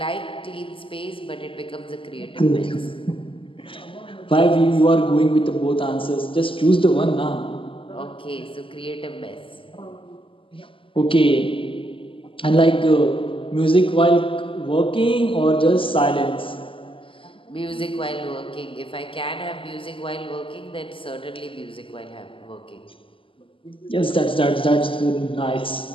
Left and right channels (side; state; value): right; late; 0.25 ms